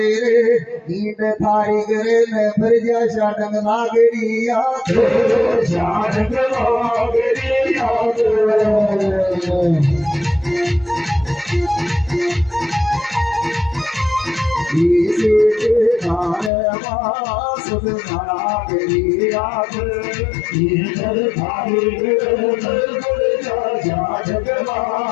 इंड थारी करे न फिर जा शाटंग नागरिया शाटंग नागरिया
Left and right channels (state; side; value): drops out; right; at 16.5 s